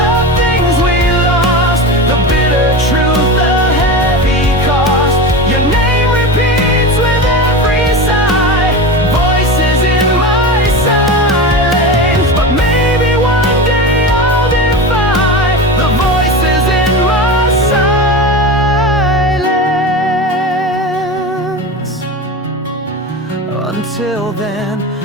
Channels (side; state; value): both; normal; correlation 0.25